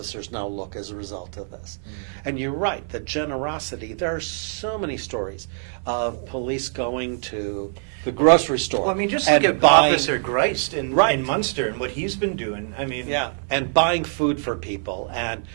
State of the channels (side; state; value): left; silent; 57 dB below the other